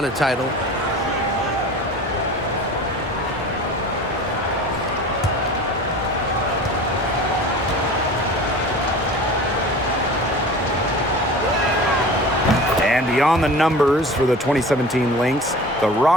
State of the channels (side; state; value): both; normal; correlation 0.38